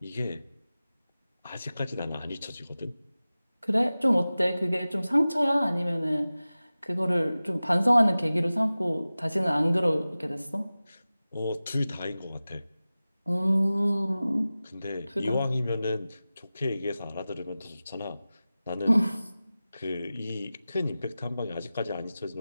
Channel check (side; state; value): both; inverted; correlation -0.96